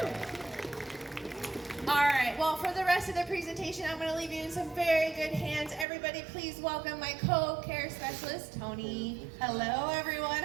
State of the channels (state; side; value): drops out; left; at 5.9 s